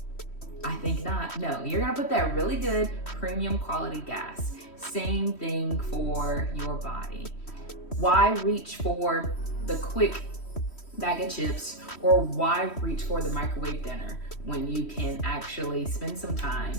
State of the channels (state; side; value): late; right; 3.1 ms